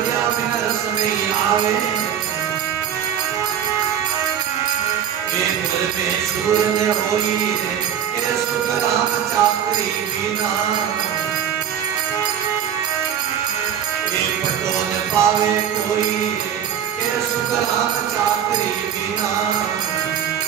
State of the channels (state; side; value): quieter; left; 8.9 dB